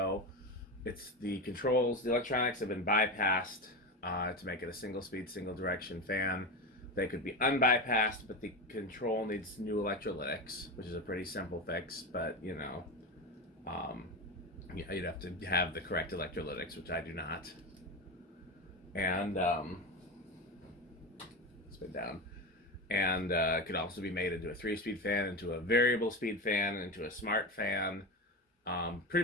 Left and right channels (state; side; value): normal; both; correlation 0.19